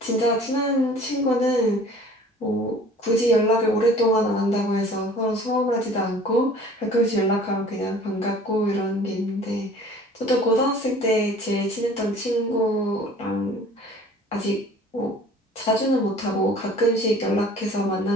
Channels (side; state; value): both; normal; correlation 0.49